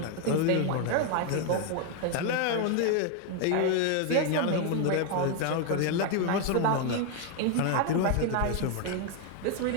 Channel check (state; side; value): different; both; correlation 0.01